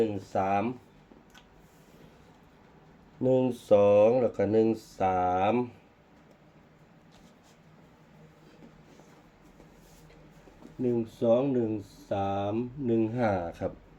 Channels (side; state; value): both; identical; correlation 1.00